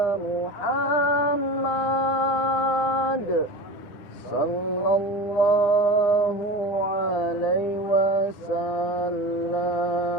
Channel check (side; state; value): right; late; 9.8 ms